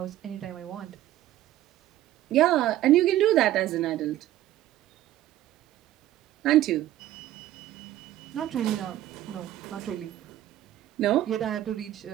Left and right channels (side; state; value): left; quieter; 13.7 dB